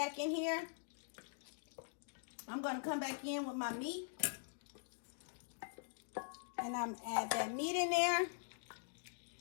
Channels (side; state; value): right; silent; digital silence